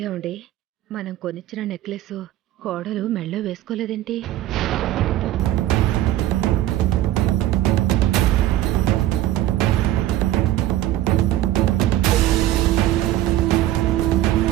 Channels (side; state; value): left; quieter; 14.0 dB